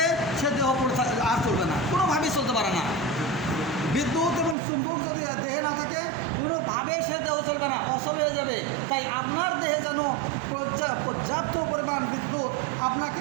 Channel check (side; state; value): left; drops out; at 4.5 s